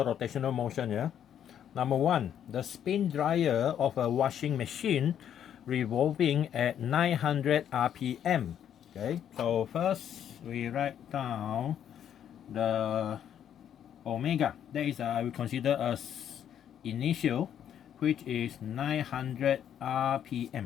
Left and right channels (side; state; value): right; quieter; 9.6 dB